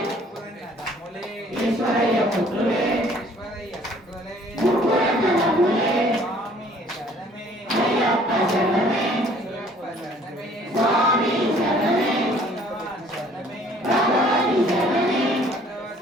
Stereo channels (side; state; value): both; normal; correlation 0.57